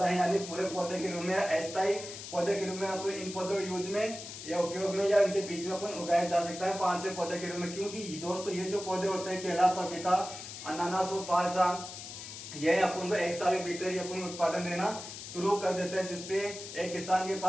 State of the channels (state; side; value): noise; left; hiss, 11 dB below the sound